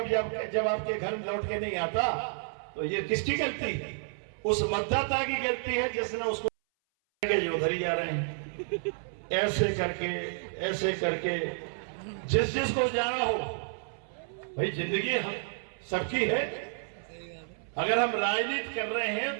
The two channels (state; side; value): silent; left; 57 dB below the other